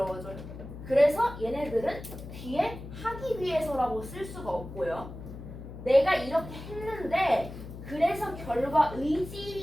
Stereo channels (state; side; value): noise; left; hum, 12 dB below the sound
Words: 그래서 얘네들은 뒤에 하기 위해서라고 쓸 수가 없고요. 내가 이렇게 했는데, 그래서 결과